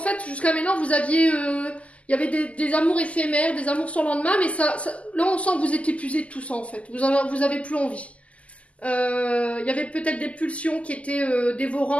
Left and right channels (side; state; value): right; late; 0.065 ms